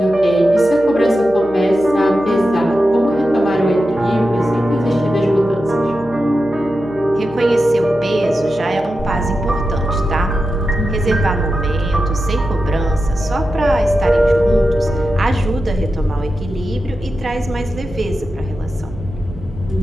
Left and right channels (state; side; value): noise; right; hum, 19 dB below the sound